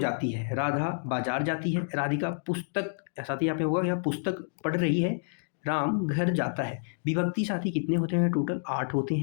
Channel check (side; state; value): right; silent; digital silence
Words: है, राधा बाजार जाती है, राधिका पुस्तक, साथी यहाँ पे होगा या पुस्तक पढ़ रही है, राम घर जाता है। विभक्ति साथी कितने होते हैं? टोटल 8 होते